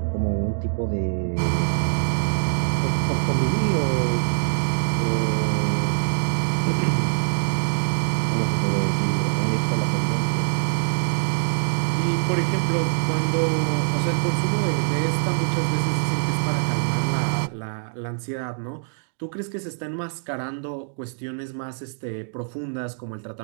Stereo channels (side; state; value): left; silent; digital silence